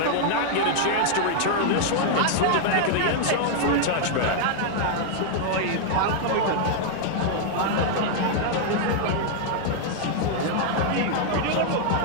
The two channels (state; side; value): different; both; correlation 0.00